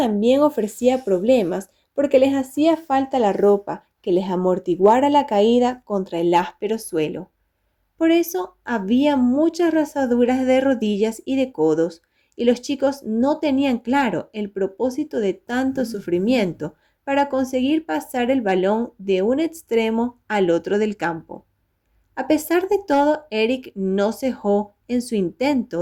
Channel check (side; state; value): both; identical; correlation 1.00